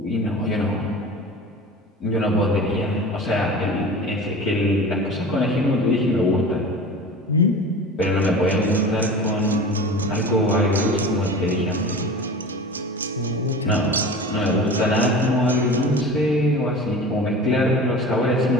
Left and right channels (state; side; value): normal; both; correlation 0.35